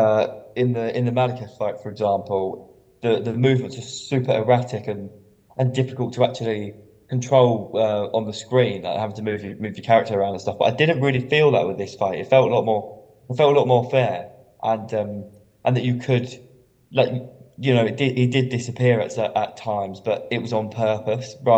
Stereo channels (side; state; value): both; identical; correlation 1.00